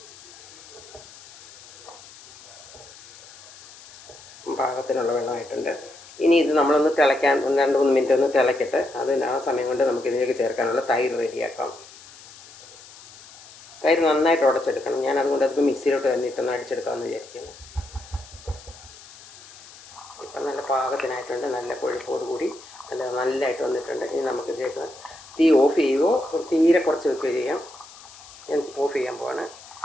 പാകത്തിനുള്ള വെള്ളമായിട്ടുണ്ട്. ഇനി ഇത് നമ്മളൊന്ന് തിളയ്ക്കാൻ 2-3 മിനിറ്റ് ഒന്ന് തിളയ്ക്കട്ടെ. ആ സമയം കൊണ്ട് നമുക്കിതിലേക്ക് ചേർക്കാനുള്ള തൈര് റെഡിയാക്കാം. തൈര് നന്നായിട്ട് ഉടച്ചെടുക്കണം. ഞാൻ അതുകൊണ്ട് അതിപ്പോൾ മിക്സിയിലോട്ട് തന്നെ ഇട്ടൊന്ന് അടിച്ചെടുക്കാമെന്ന് വിചാരിക്കുന്നു. ഇപ്പം നല്ല പാകത്തിനായിട്ടുണ്ട്. നല്ല കൊഴുപ്പോടുകൂടി നല്ലതായിട്ട് വന്നിട്ടുണ്ട്. ഇനി നമുക്കിതിലേക്ക് തീ ഓഫ് ചെയ്യുകയോ തീരെ കുറച്ച് വെക്കുകയോ ചെയ്യാം. ഞാൻ ഓഫ് ചെയ്യാൻ പോവാണ്.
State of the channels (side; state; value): left; noise; hiss, 20 dB below the sound